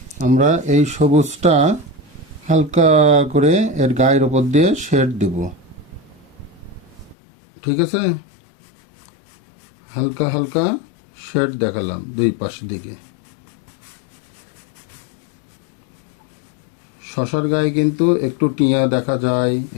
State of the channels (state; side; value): drops out; right; at 7.2 s